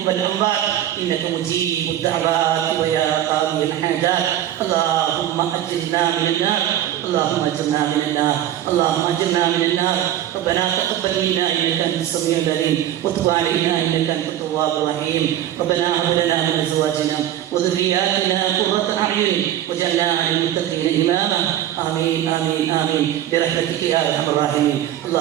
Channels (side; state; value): left; quieter; 11.9 dB